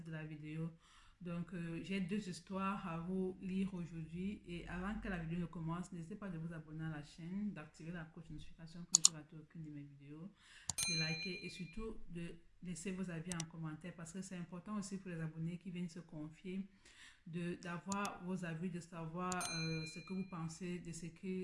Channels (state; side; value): identical; both; correlation 1.00